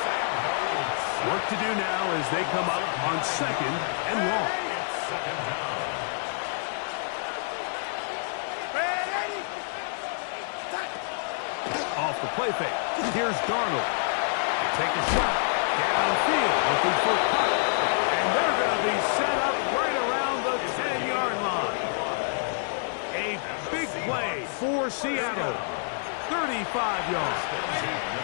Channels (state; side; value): silent; right; digital silence